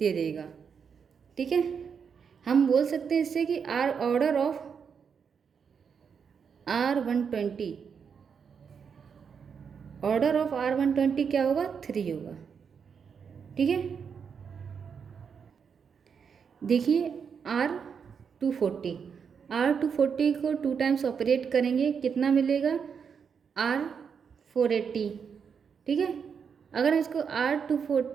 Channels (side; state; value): left; quieter; 6.6 dB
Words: देगा, ठीक है। हम बोल सकते हैं इससे कि ऑर्डर ऑफ R120 क्या होगा, 3 होगा, ठीक है। देखिए R240 को 2 टाइम्स ऑपरेट करेंगे, कितना मिलेगा, R480, ठीक है। अगर हम इसको